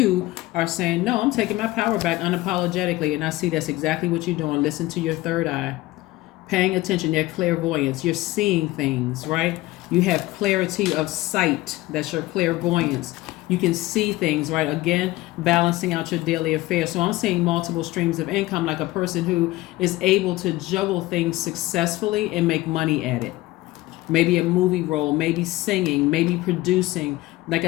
are saying, no, I'm taking my power back unapologetically. And I see that's exactly what you're doing. Listen to your third eye. Paying attention, your clairvoyance. You're seeing things, right? You have clarity of sight. That's your clairvoyance. You can see things, right? Again, balancing out your daily affairs. So I'm seeing multiple streams of income, like a person who is able to juggle things successfully and make money at it. Maybe a movie role, maybe singing, maybe producing. Like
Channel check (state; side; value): quieter; right; 18.3 dB